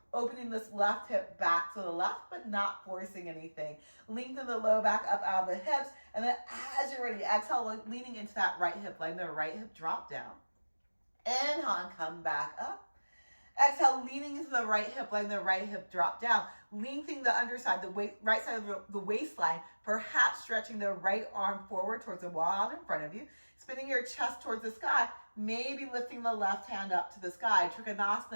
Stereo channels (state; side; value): inverted; both; correlation -1.00